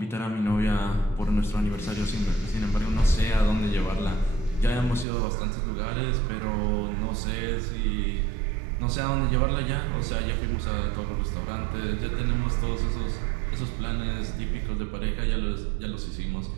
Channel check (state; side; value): drops out; left; at 5.1 s